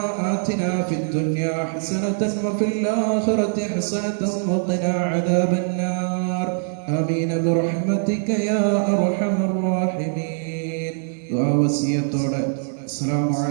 آتنا في الدنيا حسنة وفي الآخرة حسنة وقنا عذاب النار آمين برحمتك يا أرحم الراحمين. ദുആ വസിയത്തോടെ അസ്സലാമു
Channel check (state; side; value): silent; left; digital silence